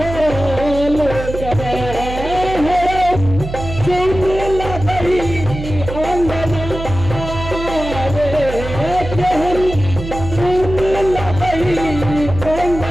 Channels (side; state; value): right; noise; hum, 8 dB below the sound